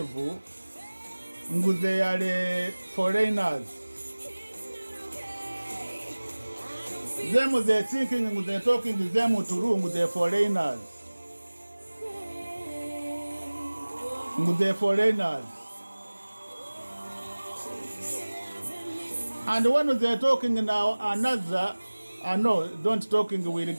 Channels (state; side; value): inverted; both; correlation -1.00